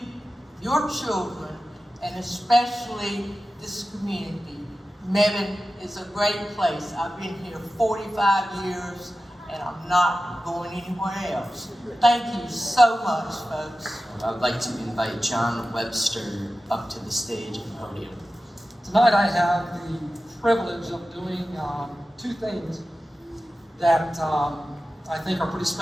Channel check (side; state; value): both; normal; correlation 0.94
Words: your children, and especially this community. Mebane is a great place. I've been here 45 years, and I'm not going anywhere else. Thank you so much, folks. I'd like to invite John Webster up to the stage and podium. Tonight I have the privilege of doing two things that I think are pretty